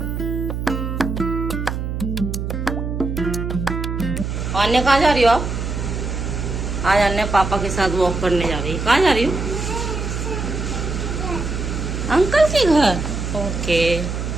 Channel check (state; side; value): noise; right; hum, 3 dB below the sound